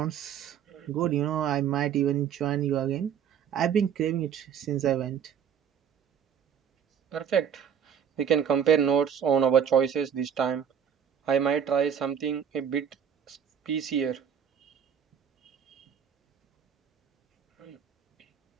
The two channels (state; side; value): quieter; left; 8.2 dB